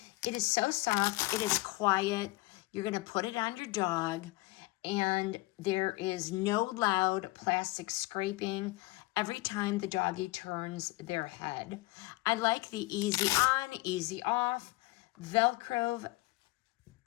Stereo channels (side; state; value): right; quieter; 21.3 dB